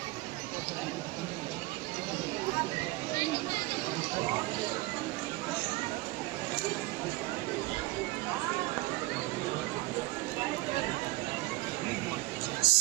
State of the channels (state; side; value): quieter; left; 19.9 dB